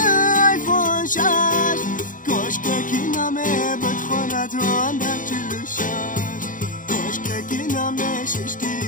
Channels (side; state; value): right; late; 0.38 ms